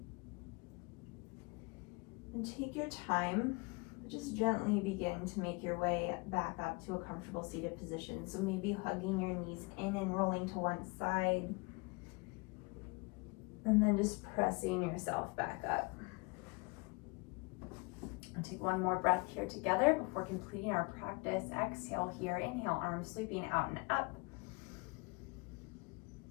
And take your time, just gently begin to make your way back up to a comfortable seated position. So maybe hugging your knees in and rolling to one side. And then just pressing yourself back up. And take one more breath here together before completing our practice. Exhale here, inhale, arms sweeping out and up.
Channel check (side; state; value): right; quieter; 28.5 dB